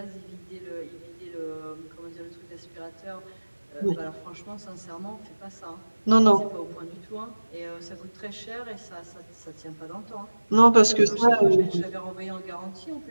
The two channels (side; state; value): both; inverted; correlation -1.00